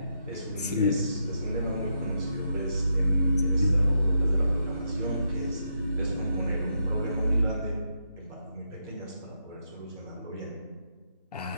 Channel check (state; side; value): inverted; both; correlation -0.80